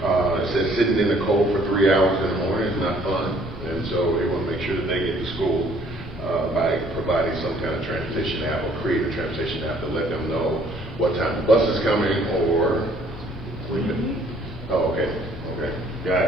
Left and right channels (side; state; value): both; normal; correlation 0.60